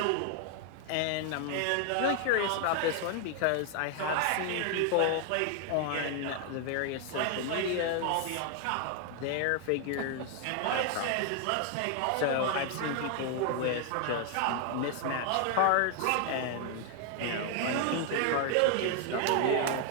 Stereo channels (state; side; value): different; both; correlation 0.00